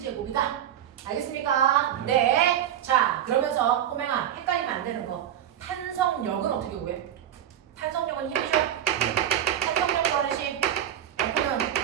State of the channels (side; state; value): left; quieter; 10.6 dB